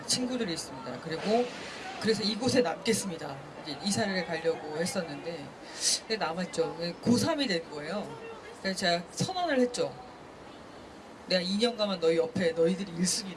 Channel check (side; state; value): both; identical; correlation 1.00